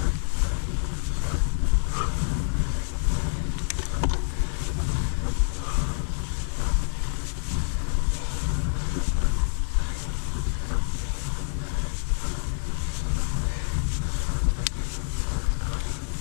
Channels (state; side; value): silent; right; 58 dB below the other